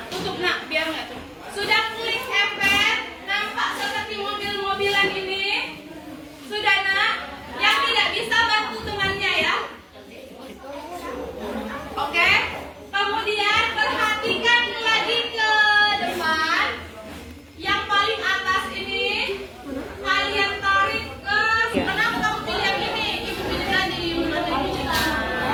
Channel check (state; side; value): identical; both; correlation 1.00